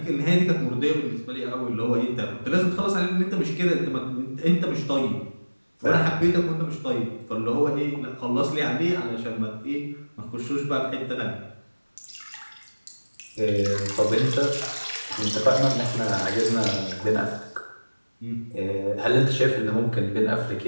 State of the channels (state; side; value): inverted; both; correlation -1.00